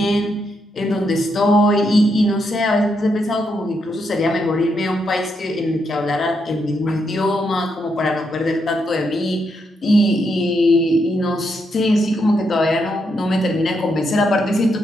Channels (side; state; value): both; normal; correlation 0.80